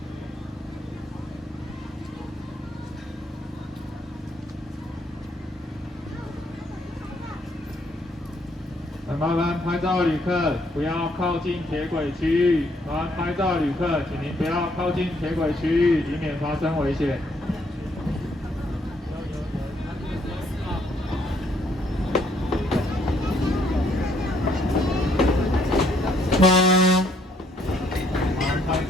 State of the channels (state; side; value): normal; both; correlation 0.69